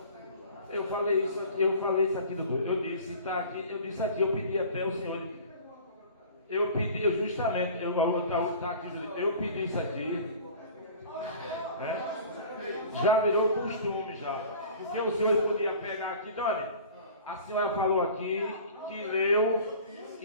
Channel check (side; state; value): both; inverted; correlation -0.43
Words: Eu falei isso aqui, doutor. Eu disse, tá aqui, eu disse aqui, eu pedi até o senhor. Eu pedi, justamente, eu pedi isso aqui. Né? Já virou costume já. Porque o senhor podia pegar aqui, Dona, a senhora falou aqui que leu